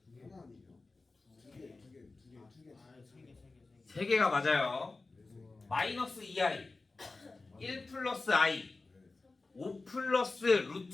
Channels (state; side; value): quieter; right; 3.6 dB